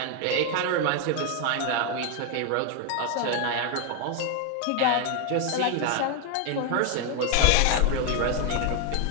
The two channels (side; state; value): both; different; correlation 0.01